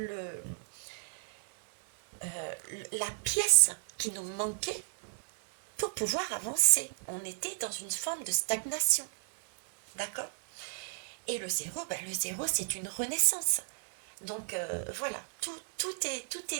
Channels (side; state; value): left; silent; digital silence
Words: la pièce qui nous manquait pour pouvoir avancer. On était dans une forme de stagnation. D'accord? Et le 0, le 0, c'est une renaissance. Donc voilà, tout